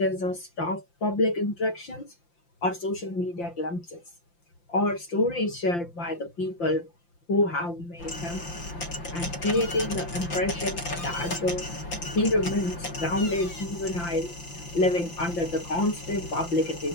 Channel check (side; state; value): right; late; 5.8 ms